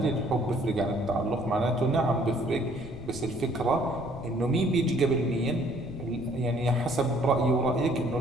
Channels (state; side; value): noise; left; rumble, 14 dB below the sound